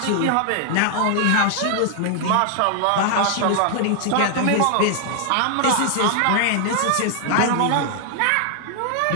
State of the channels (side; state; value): both; different; correlation 0.00